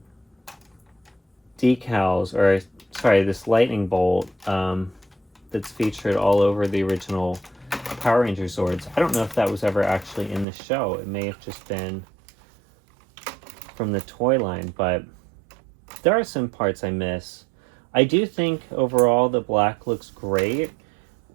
decals, or sorry, this lightning bolt that's featured all over the original Power Ranger Zords, I don't know if that was ever actually in the show. It may have just been from the toy line, but there are some parts I miss. I do think overall the black looks great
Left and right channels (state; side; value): drops out; left; at 10.5 s